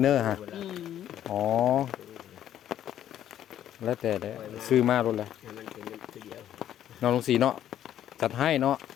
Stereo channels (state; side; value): quieter; right; 11.2 dB